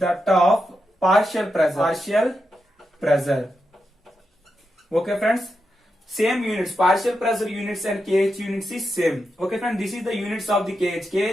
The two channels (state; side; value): normal; both; correlation 0.87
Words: of partial pressure. Okay friends, same units, partial pressure units and kh units is same. Okay friends, this is the units of the